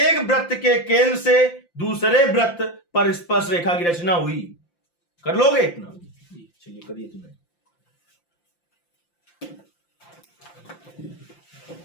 वृत्त के केंद्र से दूसरे वृत्त पर स्पर्श रेखा की रचना हुई। कर लोगे इतना? चलिए करिए तुम्हें।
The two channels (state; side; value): late; right; 5.8 ms